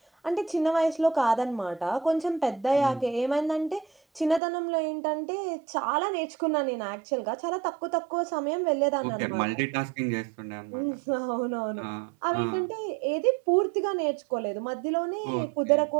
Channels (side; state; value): left; drops out; at 4.4 s